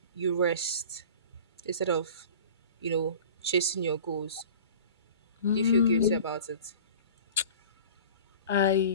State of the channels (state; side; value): inverted; both; correlation -0.40